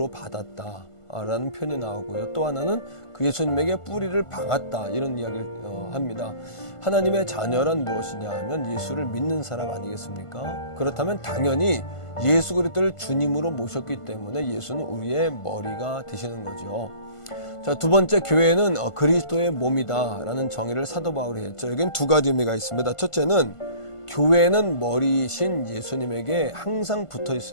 받았다 라는 표현이 나오고요. 또 하나는 그 예수님에게 뿌리를 박았다 이런 이야기를 합니다. 하나님의 자녀란 무엇이냐 하면 예수를 믿는 사람 아니겠습니까? 그렇다면 당연히 예수 그리스도를 주님으로 모셨기 때문에 예수는 우리의 머리가 되시는 거죠. 자, 두 번째, 교회는 그리스도의 몸이다 라는 정의를 사도 바울이 했죠. 여기는 두 가지 의미가 있습니다. 첫째는 교회는 머리이신 예수님에게 항상 붙어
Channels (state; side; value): late; right; 1.5 ms